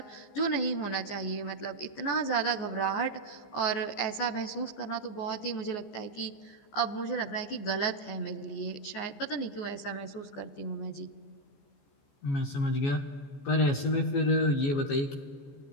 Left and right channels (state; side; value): late; right; 14 ms